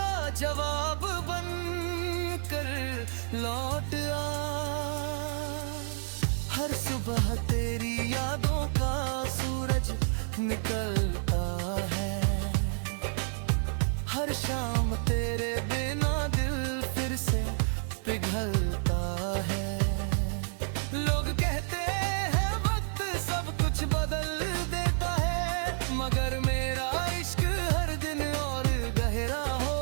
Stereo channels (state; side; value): silent; left; 58 dB below the other